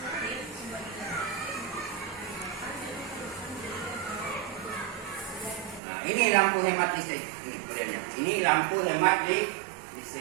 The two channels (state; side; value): drops out; left; at 5.8 s